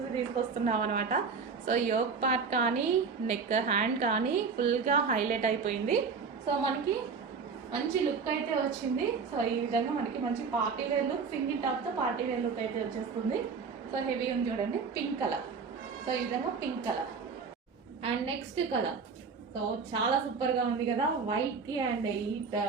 తీసుకొస్తున్నాం అనమాట. సో యోక్ పార్ట్ కానీ నెక్ హ్యాండ్ కానీ ఫుల్గా హైలైట్ అయిపోయింది. సో మనకి మంచి లుక్ అయితే వచ్చింది. సో ఈ విధంగా మనకి మంచి పార్టీ వేర్ లుక్, సింగిల్ టాప్తో పార్టీ వేర్ లుక్ అయితే వచ్చేస్తుంది. సో హెవీ ఉంది చూడండి, పింక్ కలర్. సో ఈ విధంగా pink colour. And next colour so చాలా సూపర్గా ఉంది కదా, వైట్కి అండ్ ఈ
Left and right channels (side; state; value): left; quieter; 5.3 dB